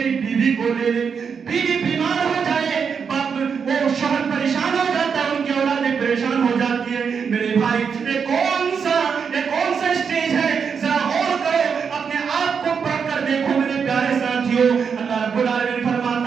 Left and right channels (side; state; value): left; quieter; 6.3 dB